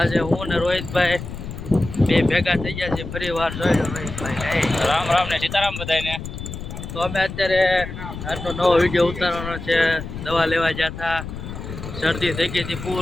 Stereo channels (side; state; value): left; noise; rumble, 9 dB below the sound